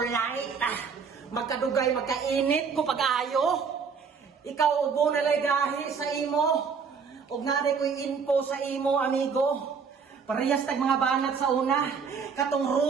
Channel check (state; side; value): quieter; left; 5.8 dB